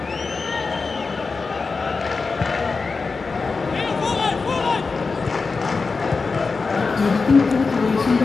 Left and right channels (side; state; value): right; quieter; 4.4 dB